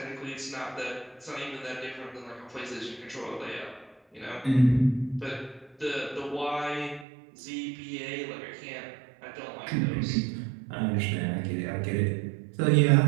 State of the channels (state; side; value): drops out; left; at 7.1 s